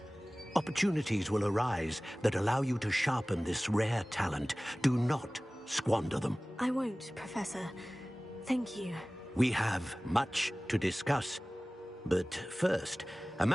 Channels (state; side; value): normal; both; correlation 0.98